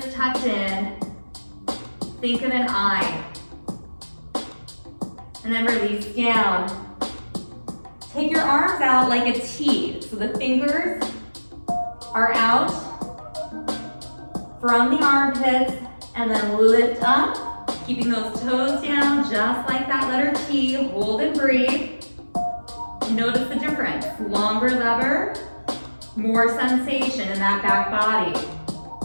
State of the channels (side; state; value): both; inverted; correlation -1.00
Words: tucked in. Think of an I. And then release down. Take your arms out like a T. So the fingers are out from the armpits and then lift up. Keeping those toes down just like that letter T. Hold and breathe. Notice the difference. Longer lever, more sensation in that back body.